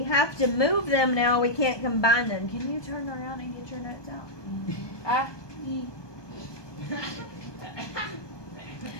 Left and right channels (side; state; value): right; late; 1.2 ms